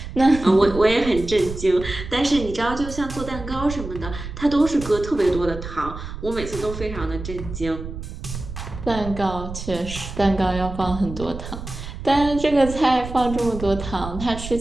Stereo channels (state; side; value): noise; right; rumble, 10 dB below the sound